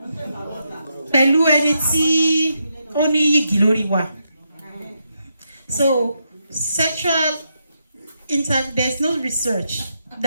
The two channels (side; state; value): both; inverted; correlation -0.82